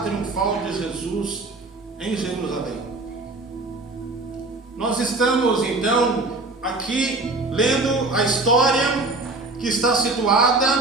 de Jesus em Jerusalém. Nós estamos então aqui lendo a história que está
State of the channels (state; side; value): quieter; left; 3.2 dB